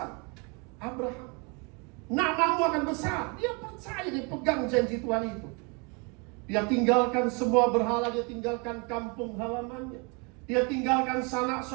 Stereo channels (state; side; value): quieter; left; 32.2 dB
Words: Abraham, namamu akan besar. Dia percaya, dia pegang janji Tuhan itu. Dia tinggalkan semua berhala, dia tinggalkan kampung halamannya, dia tinggalkan sanak